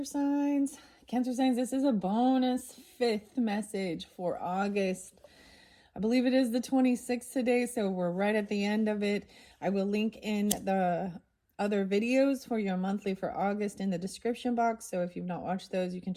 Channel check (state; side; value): identical; both; correlation 1.00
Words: signs. Cancer signs, this is a bonus fifth message for August. I believe it is the 26th today, so we're right at the end of it. I will link in the other videos for your monthly for August in the description box, so if you've not watched those, you can